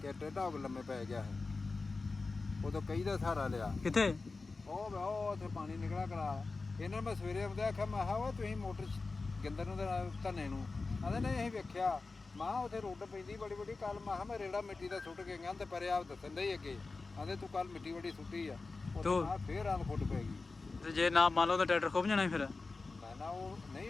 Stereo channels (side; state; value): right; quieter; 3.9 dB